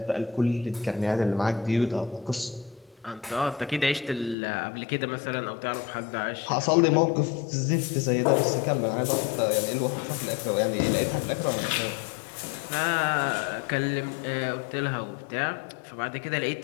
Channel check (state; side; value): drops out; right; at 4.4 s